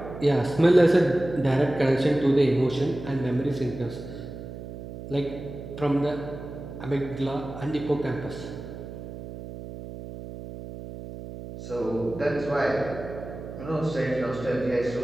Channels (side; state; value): right; noise; hum, 11 dB below the sound